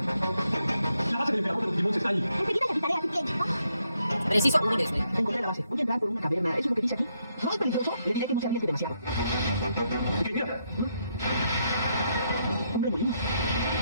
La base del emperador de los Digimons está ahí. Enseguida le avisaré a ti, Ken. Preciso, un intereso, Encontré la base. Voy a entrar por una caverna. ¿Eso es lo que dice aquí? ¿No es peligroso? Le diré que no se arriesgue demasiado. Ok, mira. Un remolino.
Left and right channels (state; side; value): inverted; both; correlation -0.77